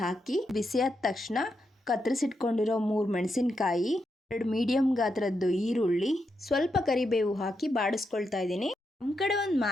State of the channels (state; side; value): normal; both; correlation 0.84